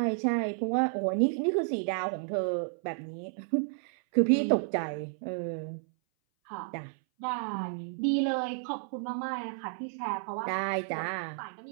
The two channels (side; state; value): left; silent; 57 dB below the other